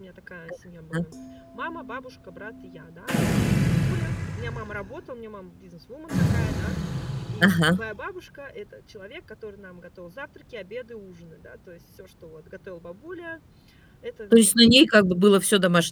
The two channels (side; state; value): both; identical; correlation 1.00